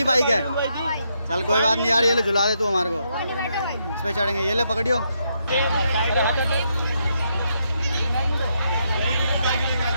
बाइक है। चल कोई बात नहीं यार, ये ले झुला दे तू हमारे को, इस पे चढ़ेंगे। ये ले पकड़ियो।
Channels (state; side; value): inverted; both; correlation -0.78